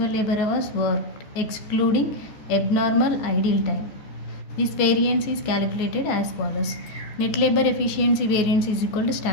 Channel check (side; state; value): right; late; 14 ms